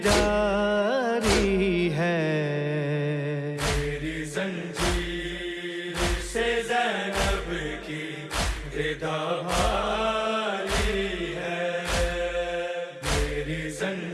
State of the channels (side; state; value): both; identical; correlation 1.00